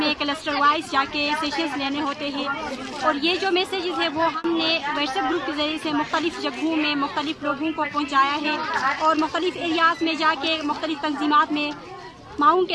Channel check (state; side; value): identical; both; correlation 1.00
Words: کلسٹر وائز جا کے سیشنز لینے ہوتے ہیں، اور یہ جو میسیجز ہے وہ ہم نے واٹس ایپ گروپ کے ذریعے سے مختلف جگہوں میں مختلف لوگوں کو پہنچایا ہے، اور مختلف ایریاز میں جا کے مختلف تنظیمات میں معاون